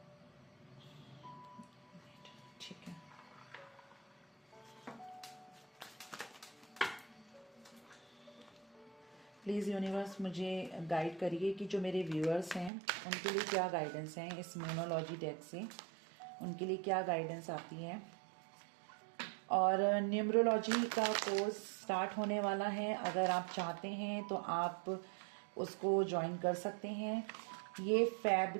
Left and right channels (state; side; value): drops out; left; at 12.7 s